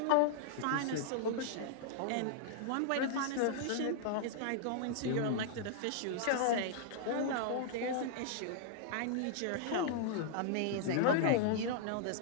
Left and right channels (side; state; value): both; different; correlation -0.01